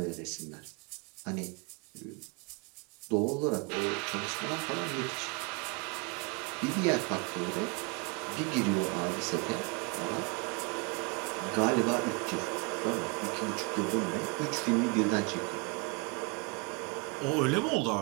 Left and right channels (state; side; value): quieter; left; 30.5 dB